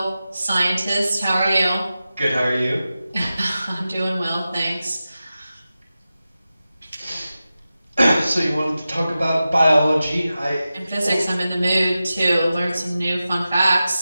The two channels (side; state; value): both; inverted; correlation -0.93